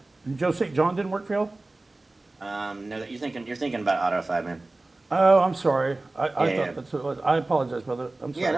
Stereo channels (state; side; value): quieter; left; 3.0 dB